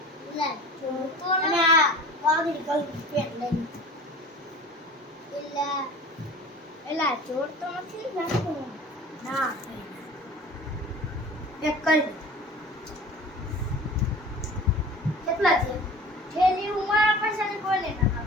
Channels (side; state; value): both; normal; correlation 0.40